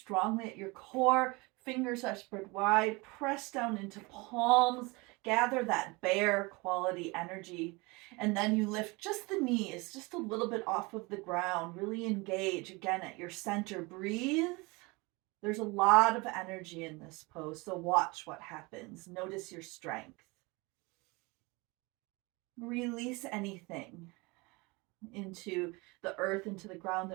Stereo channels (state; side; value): quieter; left; 25.7 dB